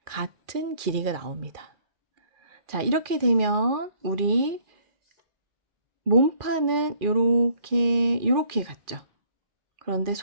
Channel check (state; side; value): late; left; 2.4 ms